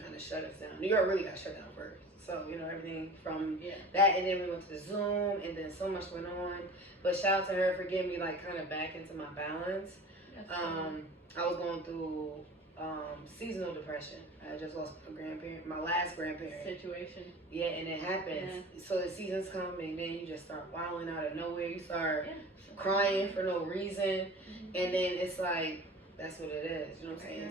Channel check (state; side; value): normal; both; correlation 0.39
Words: of shut us down. New York really got shut down first. So, you know, everything from that, and then we went to the Zoom, and then so much went on. But shout out to her for getting me like kind of back into my balance. I was going through seasonal depression. I just lost my last grandparent. Situation. Yeah, and it happens. So the seasons come, and then you just start wilding out of nowhere. You start crying for no reason, and then it's like, that's what it is. You know what I'm